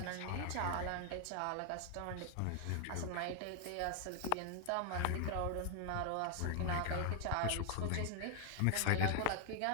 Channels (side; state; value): both; different; correlation 0.00